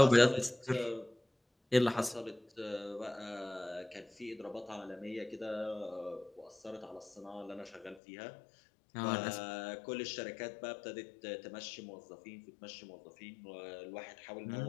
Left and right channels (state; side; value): drops out; right; at 8.0 s